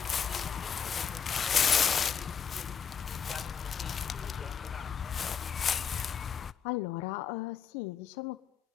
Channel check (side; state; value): right; quieter; 7.1 dB